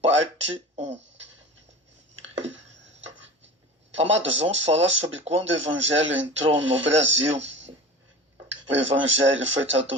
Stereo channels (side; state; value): both; normal; correlation 0.35